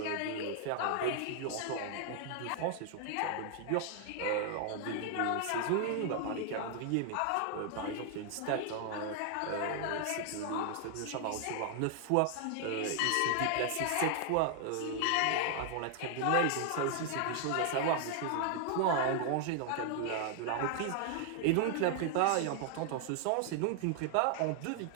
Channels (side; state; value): both; different; correlation 0.00